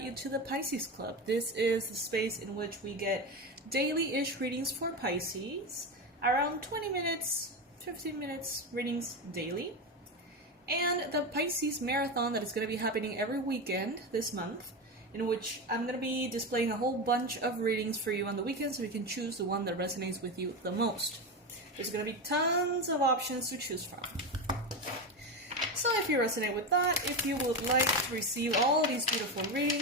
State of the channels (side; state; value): both; normal; correlation 0.17